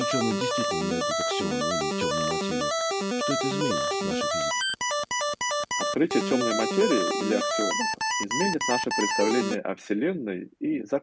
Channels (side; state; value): both; identical; correlation 1.00